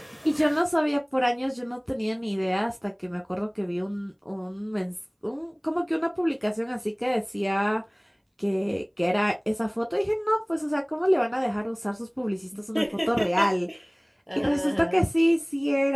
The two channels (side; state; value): both; identical; correlation 1.00